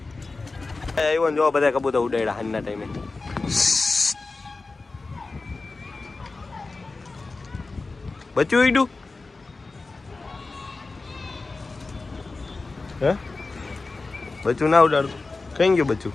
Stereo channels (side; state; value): right; quieter; 3.7 dB